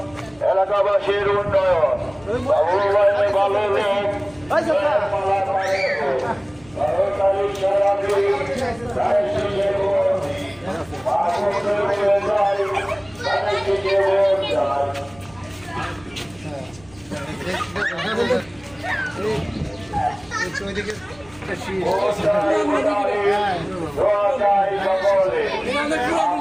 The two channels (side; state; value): right; noise; rumble, 26 dB below the sound